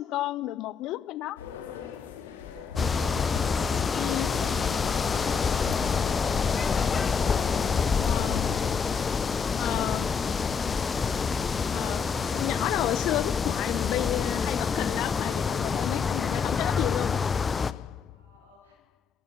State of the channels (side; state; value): right; quieter; 6.2 dB